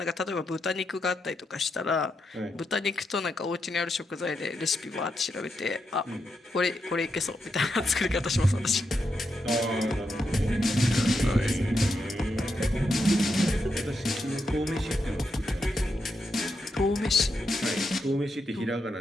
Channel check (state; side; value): normal; both; correlation 0.84